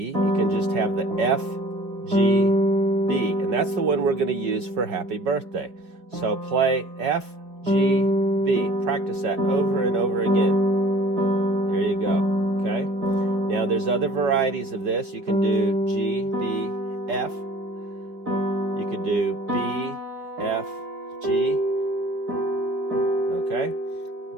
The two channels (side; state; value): left; late; 4.6 ms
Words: You can just have the F, G, B. And that's the one we're going to use for Happy Birthday. So play F, G, B. Practice that over and over again. There you go, okay? Now there's other varieties of this. You can do G, B, F. You could do B, F, G. Okay?